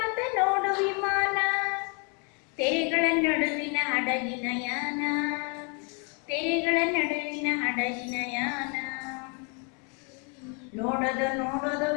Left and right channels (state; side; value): quieter; right; 35.9 dB